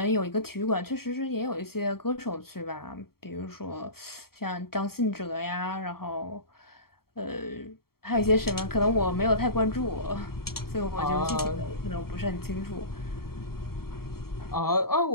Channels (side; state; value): right; late; 0.94 ms